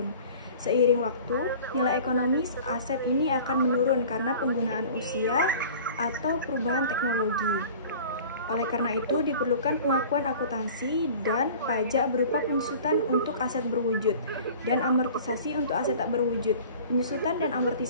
Seiring waktu, nilai ekonomis aset ini akan menurun karena penggunaan usia atau perubahan teknologi. Oleh karena itu, diperlukan pengakuan akuntansi dan pajak berupa penyusutan untuk aset berwujud dan amortisasi untuk aset tak berwujud. Penyusutan dan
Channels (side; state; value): both; inverted; correlation -0.44